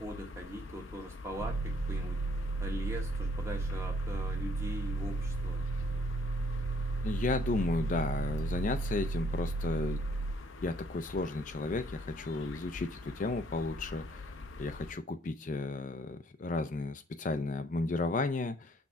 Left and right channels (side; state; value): both; normal; correlation 0.64